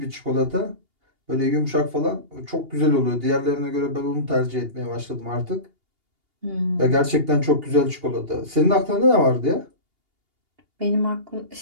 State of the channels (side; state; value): left; late; 2.8 ms